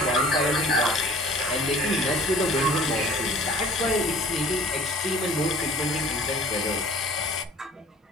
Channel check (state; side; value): normal; both; correlation 0.49